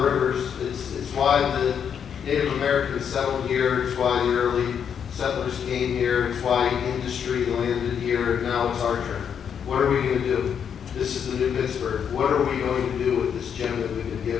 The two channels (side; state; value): right; quieter; 7.8 dB